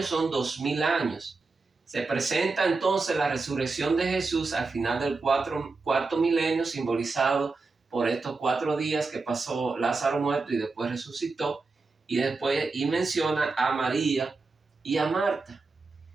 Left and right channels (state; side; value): quieter; left; 3.9 dB